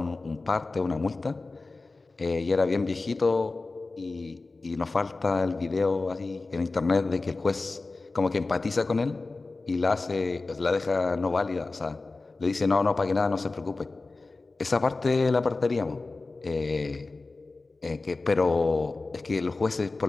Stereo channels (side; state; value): right; quieter; 3.5 dB